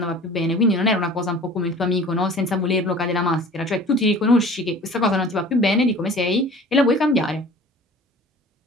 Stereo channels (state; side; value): normal; both; correlation 0.44